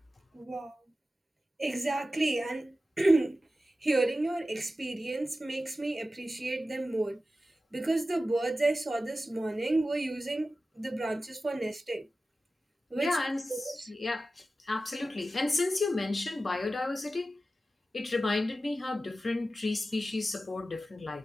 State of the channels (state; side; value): normal; both; correlation 0.94